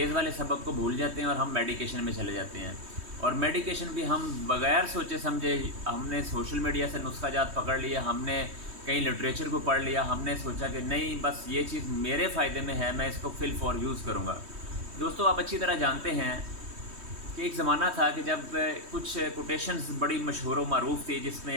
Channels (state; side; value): late; left; 3.2 ms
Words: वाले सबक को भूल जाते हैं और हम मेडिकेशन में चले जाते हैं। और मेडिकेशन भी हम बग़ैर सोचे समझे, हमने सोशल मीडिया से नुस्खा जात पकड़ लिया, हमने कहीं लिटरेचर को पढ़ लिया, हमने सोचा कि नहीं बस ये चीज़ मेरे फ़ायदे में है, मैं इसको फिल फॉर यूज़ करूँगा। दोस्तों, आप अच्छी तरह जानते हैं कि एक ज़माना था कि जब कुछ कोटेशंस बड़ी मशहूर व मारूफ़ थी, जिसमें